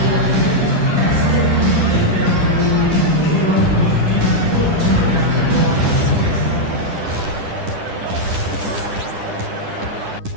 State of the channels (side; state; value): left; late; 10 ms